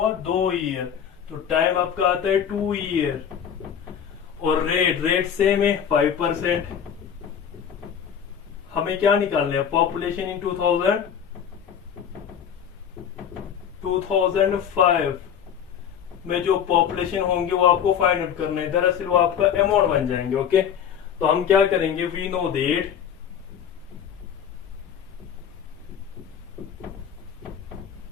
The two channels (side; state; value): right; quieter; 8.4 dB